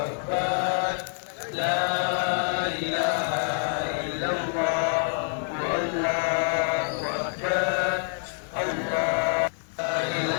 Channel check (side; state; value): right; silent; digital silence